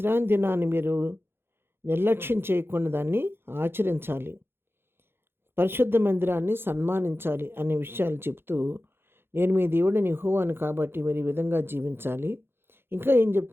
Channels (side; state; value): left; late; 0.11 ms